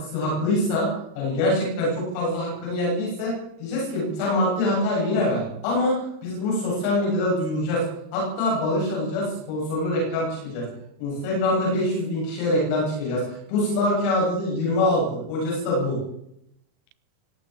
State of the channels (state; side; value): late; right; 39 ms